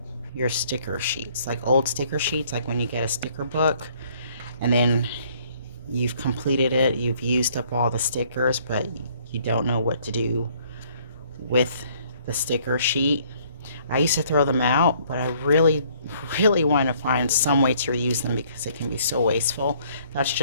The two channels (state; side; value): inverted; both; correlation -0.62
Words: your sticker sheets, like old sticker sheets, like when you get a sticker book and then you've completed it, you've used up all the stickers, but you don't know what to do with the sticker sheet. I used to throw them out, but I really want to find some way to reuse them because it can be so wasteful. That's